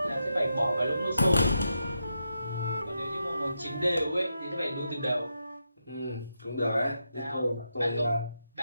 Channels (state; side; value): inverted; both; correlation -0.85